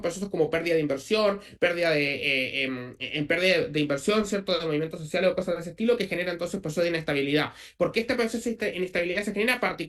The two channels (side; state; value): both; identical; correlation 1.00